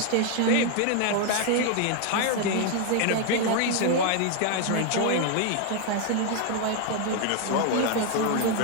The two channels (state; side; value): different; both; correlation 0.00